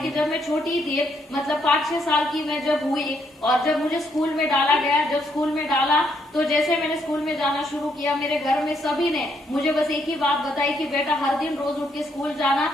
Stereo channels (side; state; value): both; normal; correlation 0.74